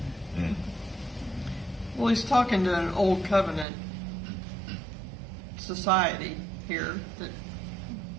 right. Mm. Well, he's talking to an old covenant society here that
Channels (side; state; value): left; drops out; at 3.7 s